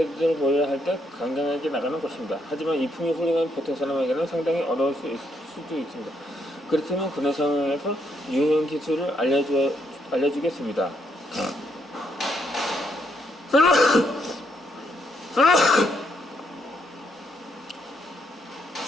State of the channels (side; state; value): both; normal; correlation 0.75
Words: 보여야 할 때 강경하게 나가는 것입니다. 하지만 이품이 훌륭한 보통 사람에게는 상당히 어려울 수도 있습니다. 그렇다면 그런 상황에서 유용 기술을 알려주겠습니다.